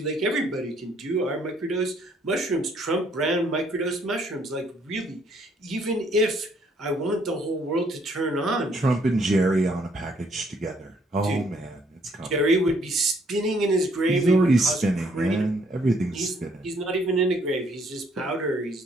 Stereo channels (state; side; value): normal; both; correlation 0.66